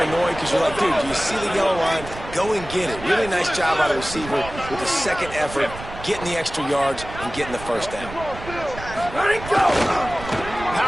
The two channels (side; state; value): right; noise; rumble, 12 dB below the sound